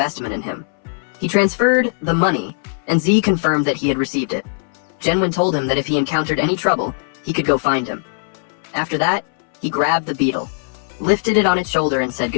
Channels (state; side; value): silent; right; 63 dB below the other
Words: in him. He transferred the money, and Z confirmed that he had received it. Genwen told him that if he encountered any trouble, he could go find him. After that, he grabbed the beetle, lifted it on its shoulder, and said